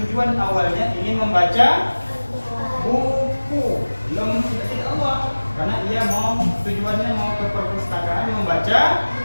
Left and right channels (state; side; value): inverted; both; correlation -1.00